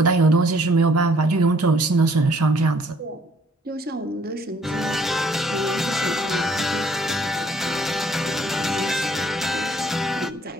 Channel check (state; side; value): normal; both; correlation 0.62